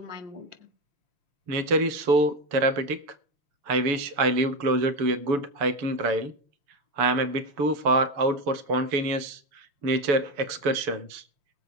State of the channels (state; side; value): late; left; 7.0 ms